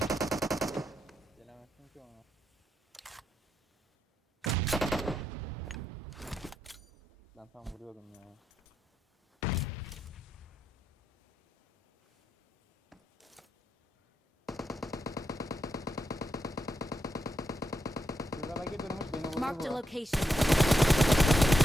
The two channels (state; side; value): normal; both; correlation 0.83